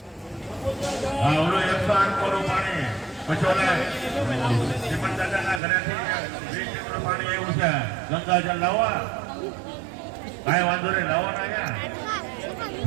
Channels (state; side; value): drops out; left; at 5.6 s